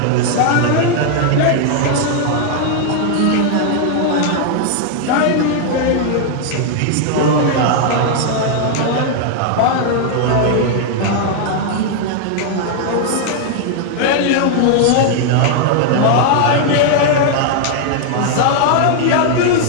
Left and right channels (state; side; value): different; both; correlation 0.00